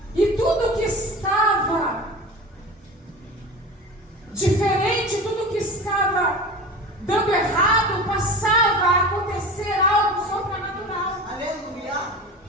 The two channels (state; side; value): normal; both; correlation 0.33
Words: E tudo que estava diferente, tudo que estava dando errado, passava a acontecer algo sobrenatural. Aleluia.